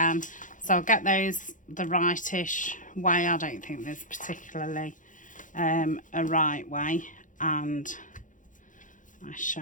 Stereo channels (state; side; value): late; right; 0.38 ms